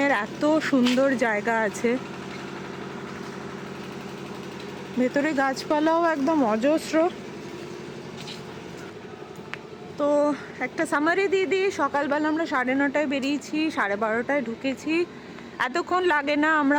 এত সুন্দর জায়গা আছে, ভেতরে গাছপালাও একদম অজস্র। তো একটা সামারি দিয়ে দিই। সকালবেলা আমরা 9:30টায় বেরিয়েছি, 12:30টায় ঢুকেছি। এতক্ষণ লাগে না,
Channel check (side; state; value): both; identical; correlation 1.00